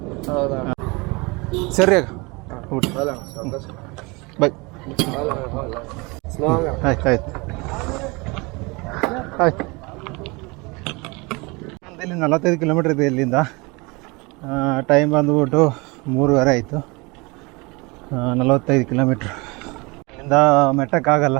ಸರಿ ಊಟ ಬೈ. ಆಯ್ತು ಆಯ್ತು ಆಯ್ತು. ಇಲ್ಲಿ 45 ಕಿಲೋಮೀಟ್ರ್ ಇದೆ ಇಲ್ಲಿಂದ. ಟೈಮ್ ಬಂದುಬಿಟ್ಟು 3:30 ಆಯಿತು. 45 ಕಿಲೋಮೀಟ್ರ್. ಇಲ್ಲಿಂದ ಮೆಟ್ಟಕ್ಕಾಗಲ್ಲ,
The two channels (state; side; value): quieter; left; 26.4 dB